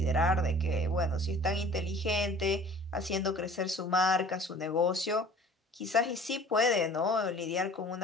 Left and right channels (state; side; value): normal; both; correlation 0.47